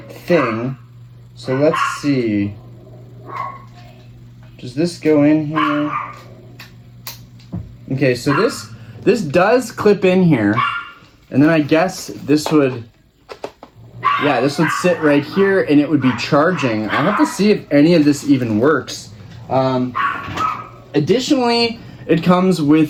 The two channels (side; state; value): both; identical; correlation 1.00